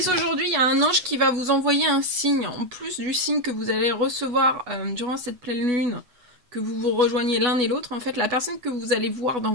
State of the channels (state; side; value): late; left; 8.2 ms